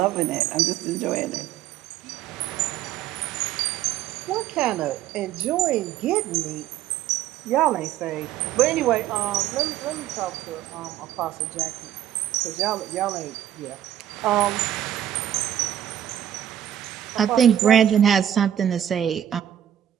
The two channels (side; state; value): left; quieter; 11.0 dB